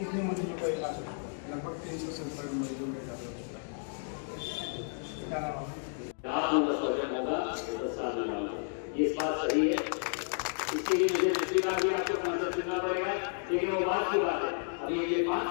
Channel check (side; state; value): right; silent; 56 dB below the other